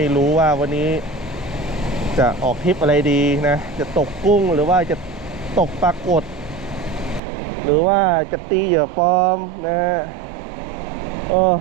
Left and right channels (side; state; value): left; drops out; at 7.2 s